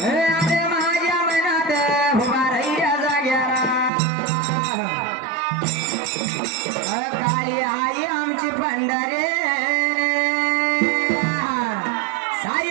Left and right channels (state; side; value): drops out; left; at 3.9 s